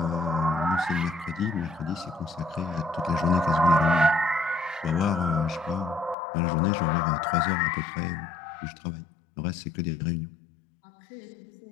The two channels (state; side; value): drops out; right; at 6.2 s